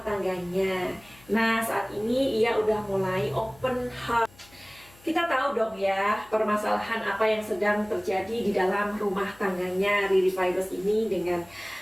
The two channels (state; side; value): noise; left; hum, 26 dB below the sound